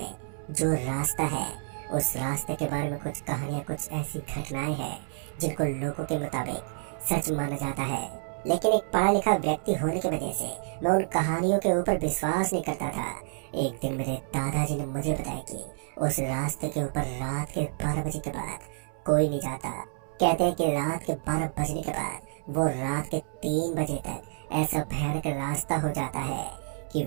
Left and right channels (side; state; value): left; silent; 59 dB below the other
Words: जो रास्ता है, उस रास्ते के बारे में कुछ कहानियां, कुछ ऐसी घटनाएं हैं जिनको लोगों के मुताबिक सच माना जाता है। लेकिन एक पढ़ा लिखा व्यक्ति होने की वजह से मैं उन कहानियों के ऊपर विश्वास नहीं करता था। एक दिन मेरे दादाजी ने मुझे बताया कि उस रास्ते के ऊपर रात के 12 बजे के बाद कोई नहीं जाता। कहते हैं कि रात के 12 बजने के बाद वो रात के 3 बजे तक ऐसा भयानक रास्ता हो जाता है कि